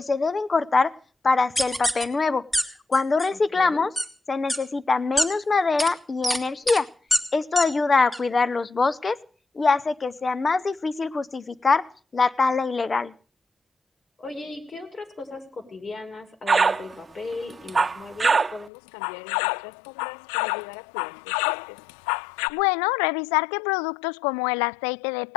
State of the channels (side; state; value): right; drops out; at 18.7 s